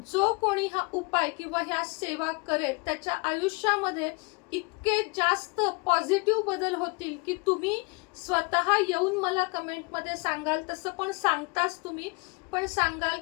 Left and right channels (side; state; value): right; quieter; 30.3 dB